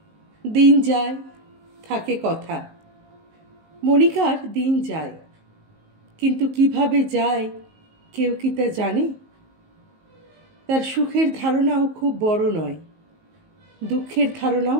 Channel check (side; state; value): left; late; 19 ms